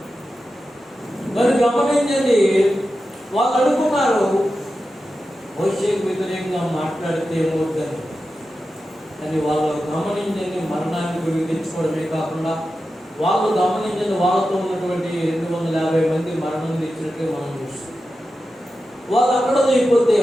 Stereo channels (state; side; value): normal; both; correlation 0.92